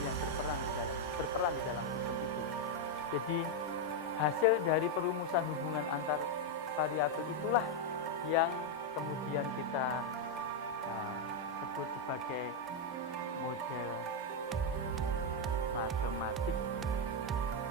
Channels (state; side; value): normal; both; correlation 0.02